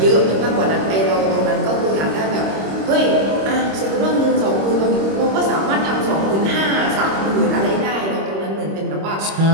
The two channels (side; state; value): left; late; 26 ms